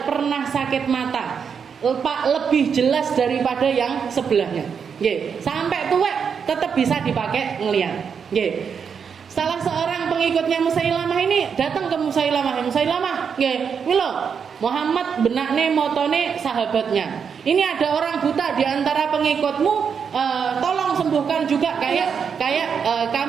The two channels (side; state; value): left; quieter; 6.7 dB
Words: pernah sakit mata. Lebih jelas daripada yang sebelahnya. Nggih, sampai tua tetap bisa dipakai ngelihat. Nggih. Salah seorang pengikutnya Musailamah ini datang ke Musailamah, nggih, milo Muhammad benakne motone sahabatnya. Ini ada orang buta di antara pengikutmu, tolong sembuhkan juga kayak